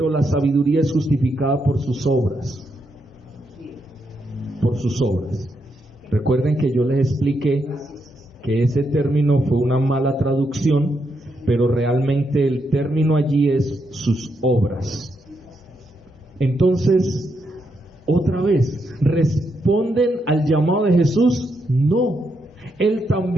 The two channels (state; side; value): normal; both; correlation 0.81